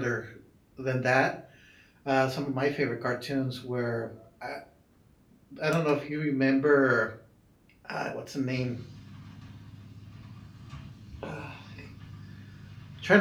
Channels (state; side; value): identical; both; correlation 1.00